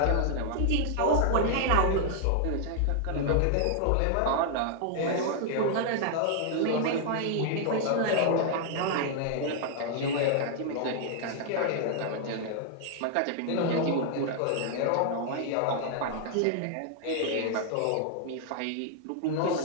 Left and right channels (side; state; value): both; different; correlation -0.01